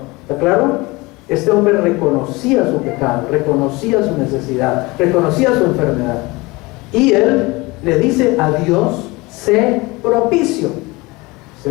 ¿Está claro? Este hombre reconocía su pecado, reconocía su necesidad, reconocía su enfermedad. Y él le dice a Dios, sé propicio. ¿Se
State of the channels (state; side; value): quieter; right; 23.3 dB